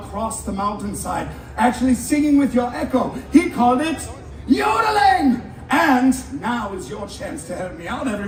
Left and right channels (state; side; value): identical; both; correlation 1.00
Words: the mountainside, actually singing with your echo. He called it yodeling. And now is your chance to help me out,